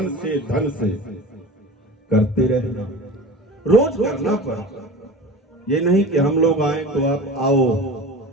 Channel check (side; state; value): both; normal; correlation 0.35